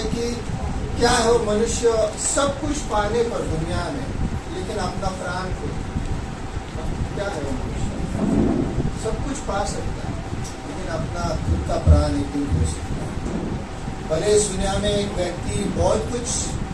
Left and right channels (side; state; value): both; identical; correlation 1.00